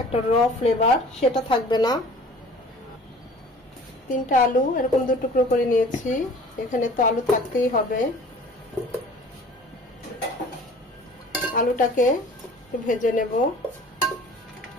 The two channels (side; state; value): both; normal; correlation 0.47